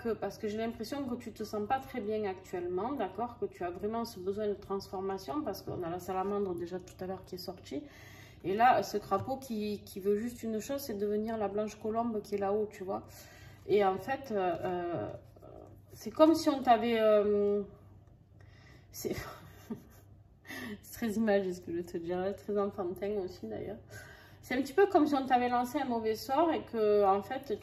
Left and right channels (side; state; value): both; identical; correlation 1.00